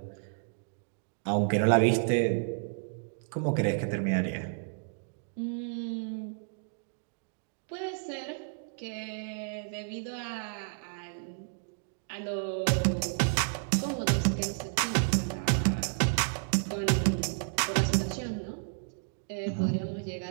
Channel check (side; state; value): left; silent; digital silence